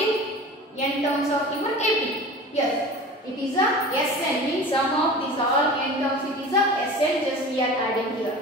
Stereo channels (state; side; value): normal; both; correlation 0.36